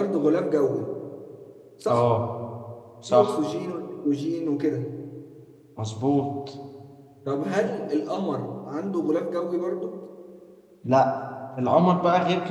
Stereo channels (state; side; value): identical; both; correlation 1.00